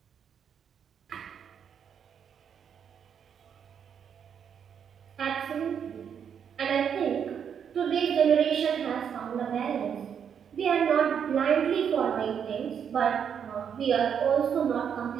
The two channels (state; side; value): quieter; left; 7.8 dB